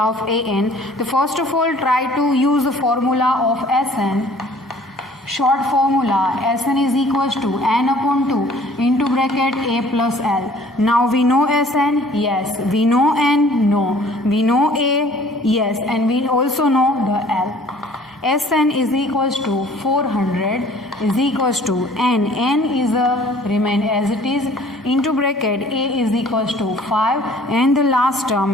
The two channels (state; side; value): normal; both; correlation 0.53